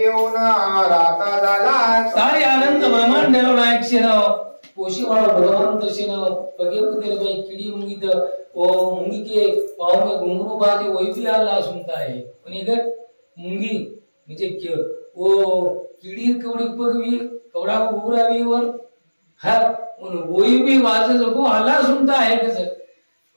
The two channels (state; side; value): inverted; both; correlation -1.00